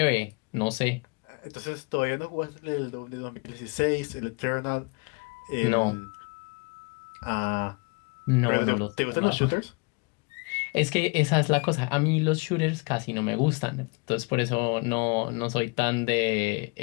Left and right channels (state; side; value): quieter; right; 30.7 dB